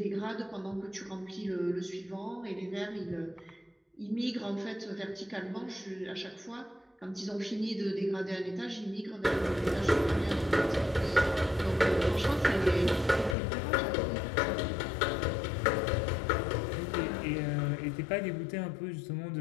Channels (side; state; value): right; drops out; at 13.4 s